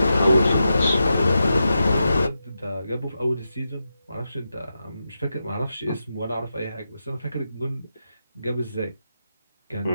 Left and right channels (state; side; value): inverted; both; correlation -0.88